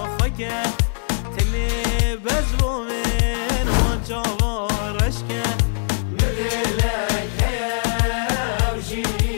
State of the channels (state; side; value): silent; right; digital silence